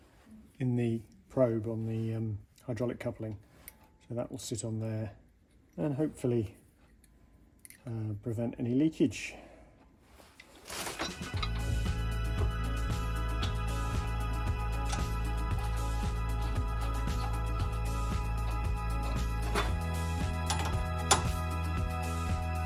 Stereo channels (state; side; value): identical; both; correlation 1.00